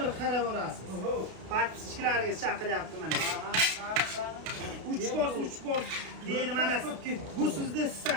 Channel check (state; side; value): late; left; 32 ms